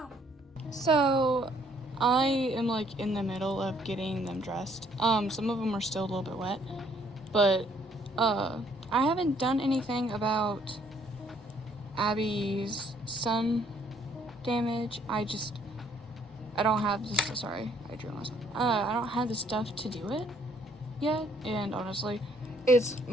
So, I am like in the middle of getting them dressed. Some of them are still a little bit wet, but, I haven't done anything about Abby's sun damage. I don't have this, sorry, I drew myself. I don't have the stuff to do it yet, and honestly,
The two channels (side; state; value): both; normal; correlation 0.64